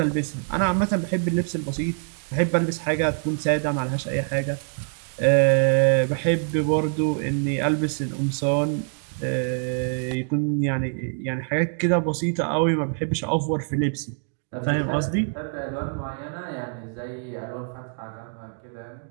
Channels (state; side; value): silent; left; 62 dB below the other